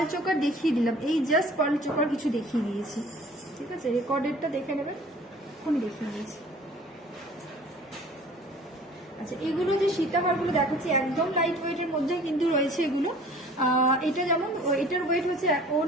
চোকার দেখিয়ে দিলাম, এই জাস্ট পাল চোকার কিছু দেখিয়ে দিয়েছি, ঠিক আছে? রেকর্ডেডটা দেখে নেবেন, এখনই দেখিয়ে দিয়েছি। আচ্ছা এগুলো যে সীতাহারগুলো দেখাচ্ছি একদম লাইট ওয়েটের মধ্যে কিন্তু রয়েছে এগুলো। এটা যেমন এটার ওয়েট হচ্ছে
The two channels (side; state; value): both; normal; correlation 0.49